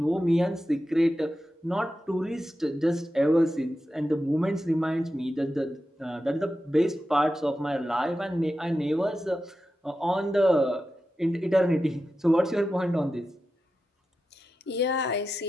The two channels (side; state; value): both; normal; correlation 0.91